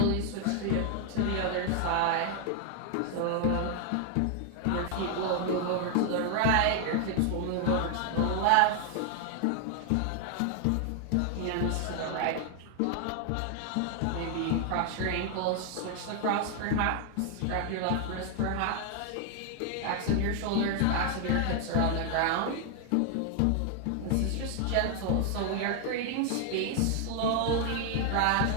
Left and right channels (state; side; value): different; both; correlation 0.00